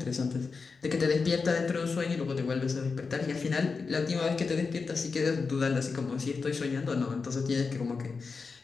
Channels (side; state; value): right; quieter; 4.7 dB